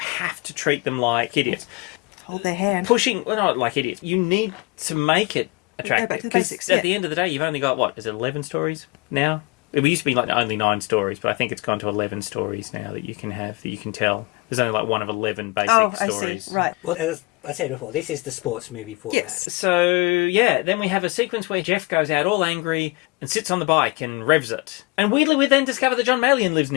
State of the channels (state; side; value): quieter; right; 25.0 dB